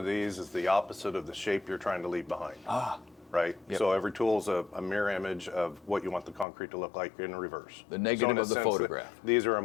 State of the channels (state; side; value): drops out; right; at 6.5 s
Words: these is the opposite of the shape you're trying to leave behind. Right? Yep. So every tool is a mirror image of what you want the concrete to look like in reverse. The negative in a of the sense, photograph. These are a